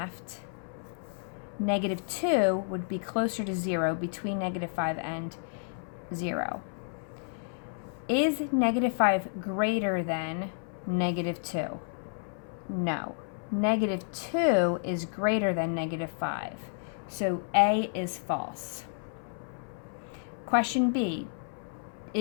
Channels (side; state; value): right; silent; 57 dB below the other